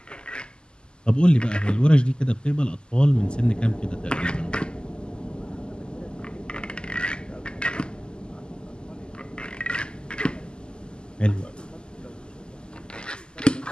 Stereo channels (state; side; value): late; right; 0.048 ms